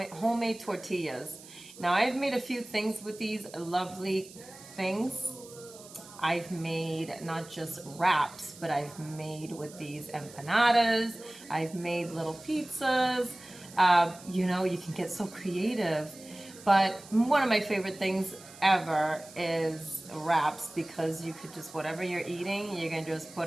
tortillas. Now, I've made a few things with these lovely things. I've made not just wraps, but I've made with these empanadas. I've made little pizzas. You can get so creative. But one of my favorite things ever is wraps, because you could just, whatever you're eating, you can just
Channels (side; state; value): right; noise; hiss, 19 dB below the sound